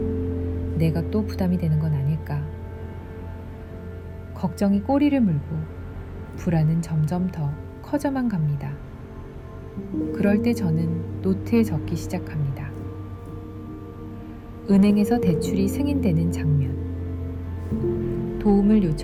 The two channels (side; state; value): both; identical; correlation 1.00